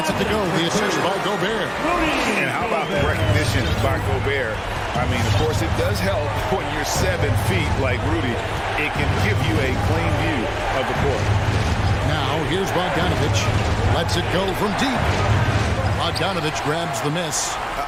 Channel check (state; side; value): identical; both; correlation 1.00